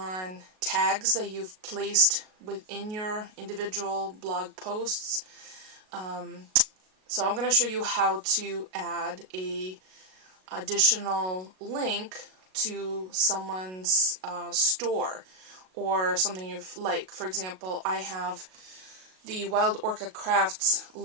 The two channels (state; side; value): late; left; 38 ms